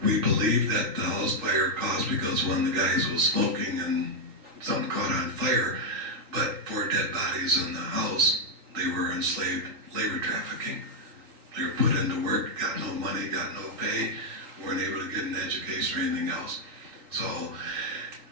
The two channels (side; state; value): left; late; 4.1 ms